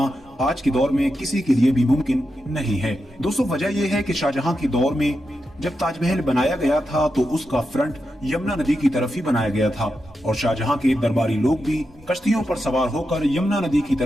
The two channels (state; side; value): normal; both; correlation 0.87